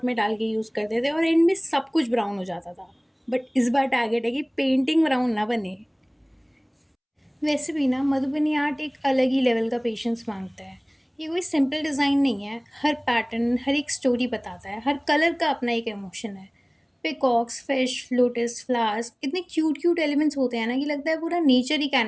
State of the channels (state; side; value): identical; both; correlation 1.00